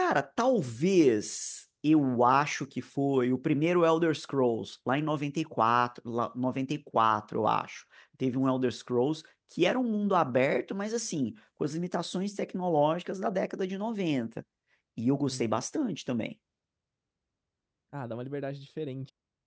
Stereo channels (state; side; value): identical; both; correlation 1.00